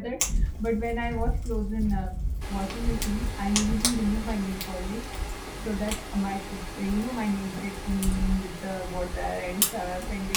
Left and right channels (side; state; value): both; identical; correlation 1.00